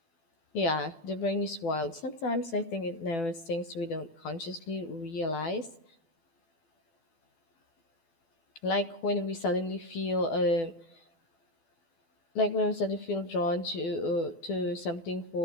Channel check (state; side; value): late; right; 12 ms